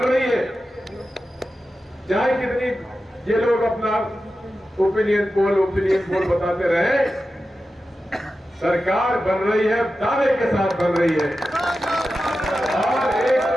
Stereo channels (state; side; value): normal; both; correlation 0.92